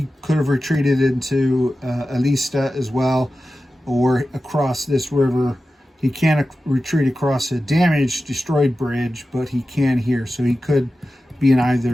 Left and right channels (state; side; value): normal; both; correlation 0.94